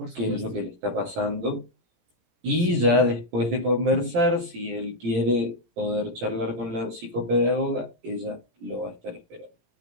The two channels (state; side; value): late; left; 17 ms